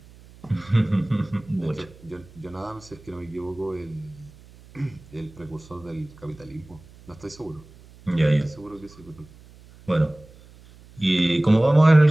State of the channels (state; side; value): noise; right; hum, 23 dB below the sound